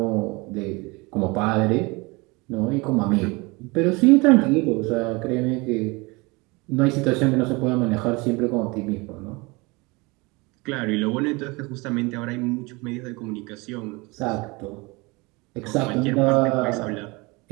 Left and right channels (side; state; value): left; quieter; 25.7 dB